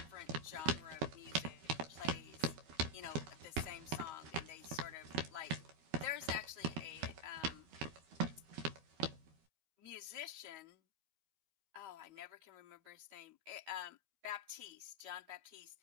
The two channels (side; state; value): left; late; 13 ms